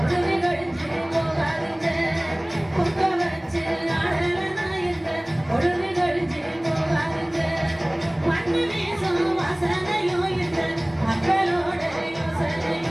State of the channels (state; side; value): noise; left; rumble, 28 dB below the sound